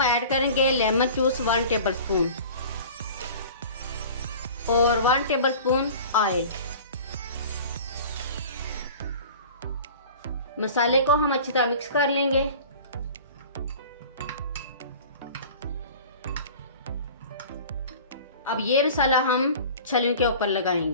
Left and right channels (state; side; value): inverted; both; correlation -0.41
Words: ऐड करेंगे लेमन जूस 1 टेबलस्पून और 1 टेबलस्पून ऑयल। मसाले को हम अच्छी तरह मिक्स कर लेंगे। अब ये मसाला हम छलियों के ऊपर